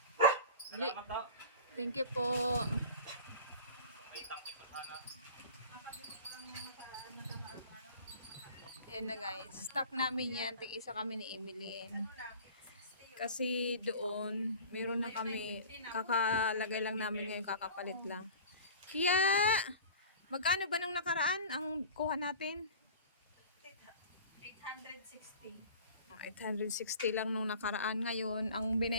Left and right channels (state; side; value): inverted; both; correlation -0.40